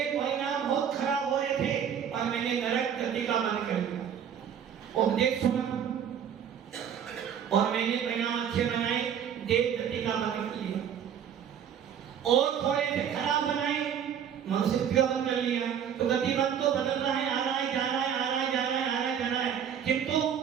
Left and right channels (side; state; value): left; quieter; 8.5 dB